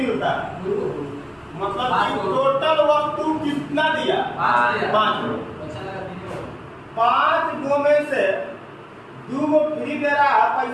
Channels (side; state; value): both; identical; correlation 1.00